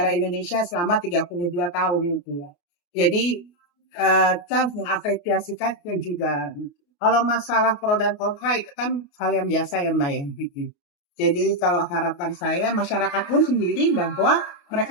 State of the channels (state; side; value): late; right; 28 ms